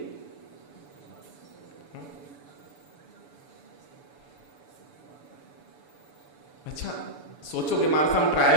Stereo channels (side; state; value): right; late; 6.9 ms